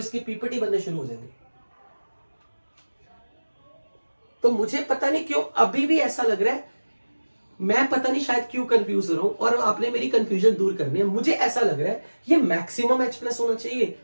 पीपीटी बनने शुरू हो जाएंगे। तो मुझे पता नहीं क्यों अभी भी ऐसा लग रहा है, मैं पता नहीं शायद क्यों कंफ्यूज हो रहा हूं, और आपने मेरी कंफ्यूजन दूर करनी है। मुझे ऐसा लग रहा है ये मैक्सिमम H+ होना चाहिए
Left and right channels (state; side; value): inverted; both; correlation -1.00